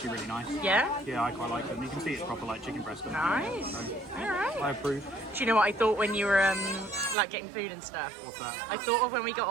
really nice. Yeah? Yeah, I quite like them. You can see it's proper like chicken breast. Nice. So All right. I approve. Do you know what I thought when you were like getting food and stuff? What's that? I thought of when we got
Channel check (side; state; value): left; drops out; at 7.2 s